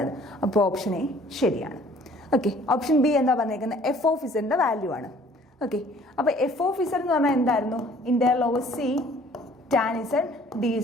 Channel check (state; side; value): normal; both; correlation 0.55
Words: അപ്പോൾ ഓപ്ഷൻ എ ശരിയാണ്. ഓക്കെ, ഓപ്ഷൻ ബി എന്താ പറഞ്ഞേക്കുന്നത്? എഫ് ഓഫ് ഇസഡിന്റെ വാല്യൂ ആണ്. ഓക്കെ, അപ്പോൾ എഫ് ഓഫ് ഇസഡ് എന്ന് പറഞ്ഞാൽ എന്തായിരുന്നു? Integral over C tan Z D